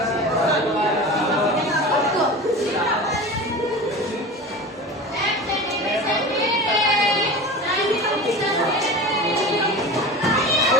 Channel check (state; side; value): normal; both; correlation 0.33